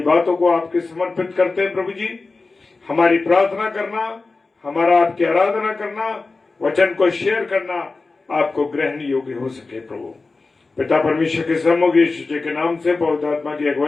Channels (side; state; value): right; quieter; 3.8 dB